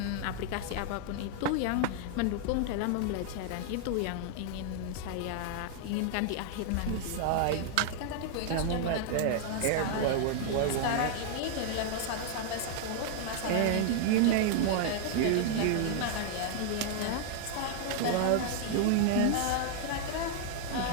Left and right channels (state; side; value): different; both; correlation 0.00